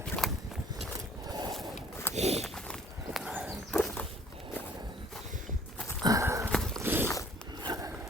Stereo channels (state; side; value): normal; both; correlation 0.56